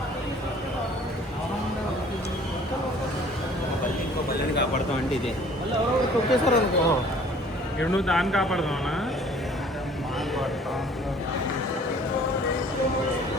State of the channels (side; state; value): both; normal; correlation 0.53